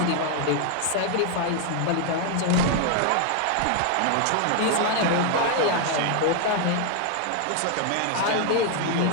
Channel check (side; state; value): both; different; correlation 0.00